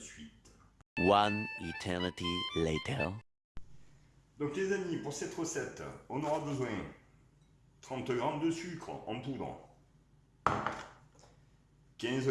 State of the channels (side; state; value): both; identical; correlation 1.00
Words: One eternity later. Donc les amis, pour cette recette, on aura besoin 30 g de sucre en poudre, 15